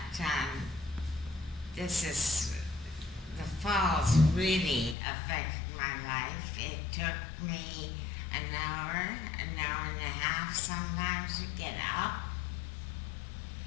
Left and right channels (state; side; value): drops out; right; at 5.0 s